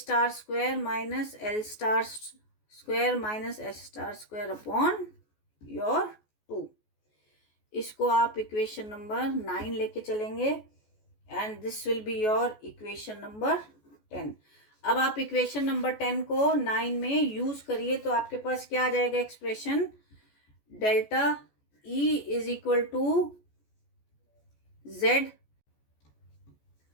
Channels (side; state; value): right; late; 14 ms